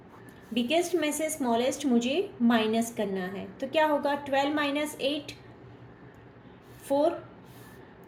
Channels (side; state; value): both; identical; correlation 1.00